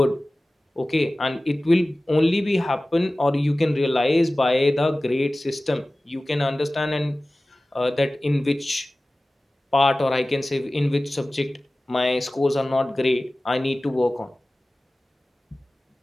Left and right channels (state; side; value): normal; both; correlation 0.97